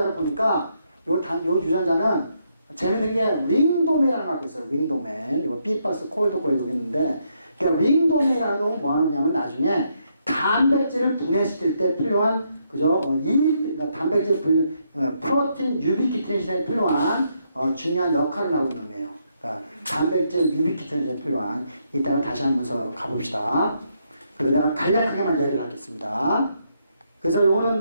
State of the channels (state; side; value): inverted; both; correlation -0.76